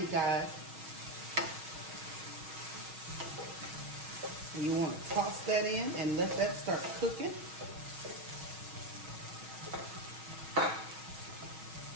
guys. And you want to toss that in and let that start cooking.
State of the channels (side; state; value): left; late; 6.2 ms